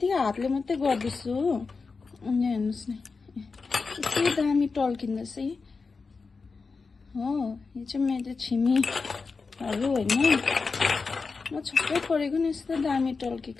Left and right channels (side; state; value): right; quieter; 4.5 dB